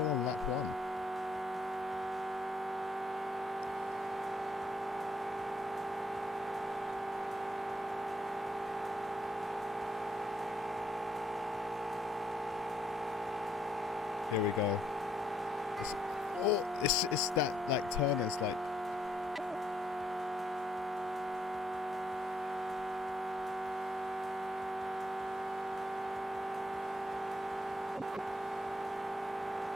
on lap 1? Here we go. It's that like turn is like.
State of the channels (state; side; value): normal; both; correlation 0.71